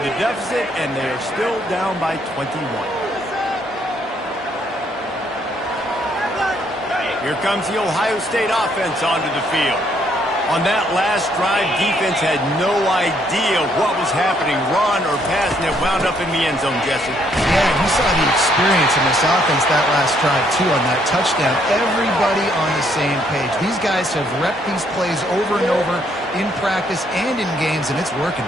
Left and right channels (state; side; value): normal; both; correlation 0.69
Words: deficit, and they are still down by 21. Here comes the Ohio State offense onto the field. On that last drive, defense had no idea what was happening, run or pass, and it wound up in the end zone, Jesse. Yeah, you saw the experience in this offense that last drive, too, on that touchdown. Everybody on the same page. These guys have repped these plays over and over in practice and in games, and it's working.